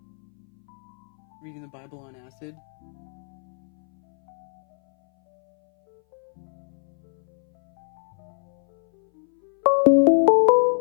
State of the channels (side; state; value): right; silent; 60 dB below the other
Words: Reading the Bible on acid.